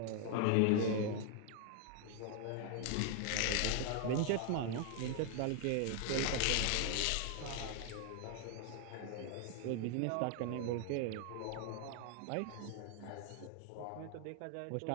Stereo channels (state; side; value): different; both; correlation 0.00